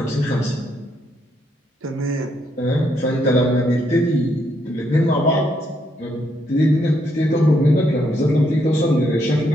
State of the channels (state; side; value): normal; both; correlation 0.75